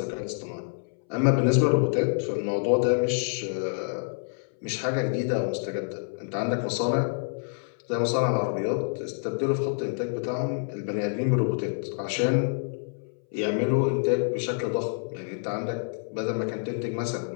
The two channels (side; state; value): right; silent; 60 dB below the other